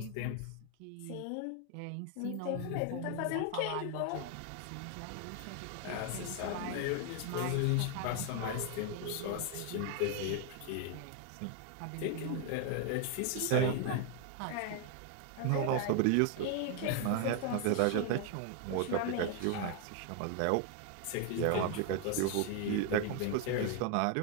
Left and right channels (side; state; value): both; different; correlation 0.00